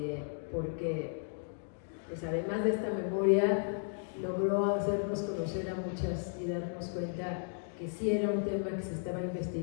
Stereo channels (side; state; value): right; silent; digital silence